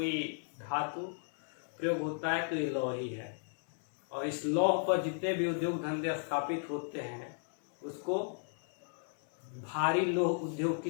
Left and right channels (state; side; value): silent; right; digital silence